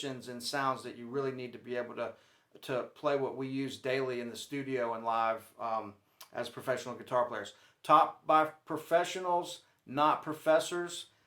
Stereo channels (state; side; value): identical; both; correlation 1.00